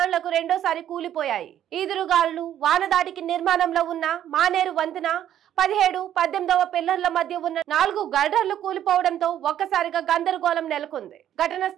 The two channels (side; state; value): left; quieter; 11.0 dB